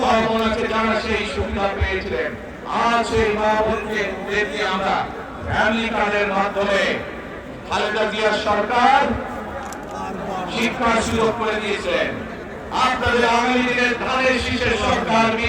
মা বোন আছে যারা সেই সুবিধা পেয়েছিলেন। আজ সেই মা বোনকে আমরা ফ্যামিলি কার্ডের মাধ্যমে খালেদা জিয়ার সরকার শিক্ষার সুযোগ করে দিয়েছিলেন। আপনাদের আগামী দিনের ধানের শীষের সরকার,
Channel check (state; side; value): identical; both; correlation 1.00